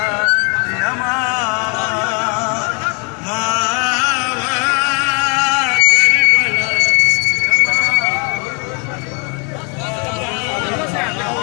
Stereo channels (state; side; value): quieter; right; 34.0 dB